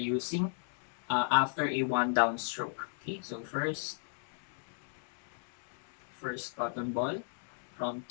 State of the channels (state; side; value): silent; right; 54 dB below the other